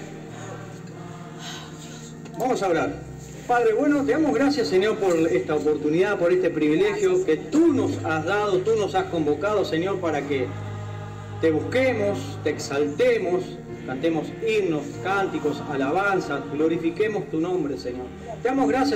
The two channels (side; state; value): both; identical; correlation 1.00